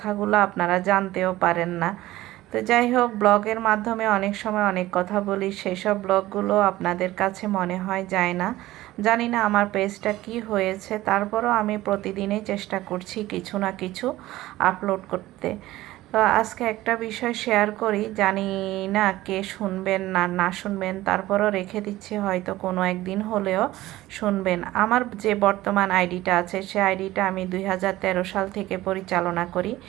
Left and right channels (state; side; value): quieter; left; 16.6 dB